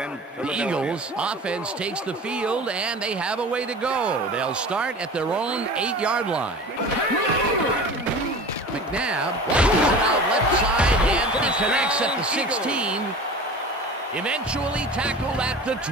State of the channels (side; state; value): both; normal; correlation 0.37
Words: The Eagles offense takes the field, and they have a way to go. They'll start at their own 8-yard line. McNabb launches it out left side, and he connects at the 16. Eventually tackled at the